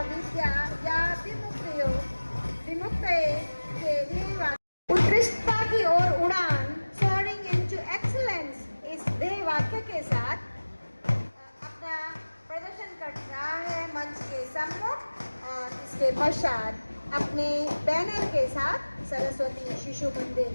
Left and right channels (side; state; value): both; inverted; correlation -1.00